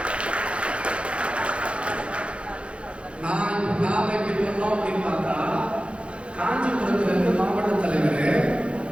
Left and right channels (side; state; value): left; late; 0.059 ms